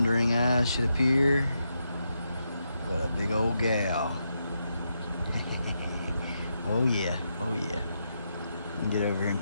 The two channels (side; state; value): both; inverted; correlation -0.83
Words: eyes should appear but a big old gal. Oh yeah, oh yeah. Get over here and